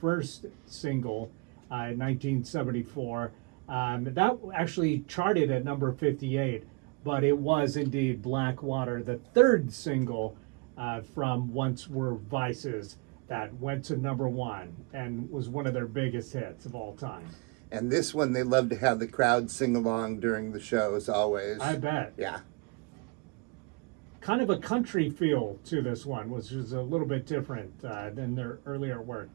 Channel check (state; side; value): quieter; left; 30.2 dB